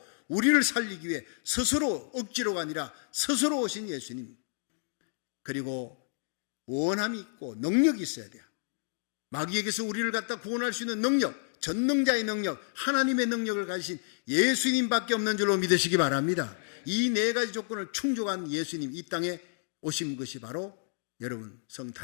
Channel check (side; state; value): right; silent; digital silence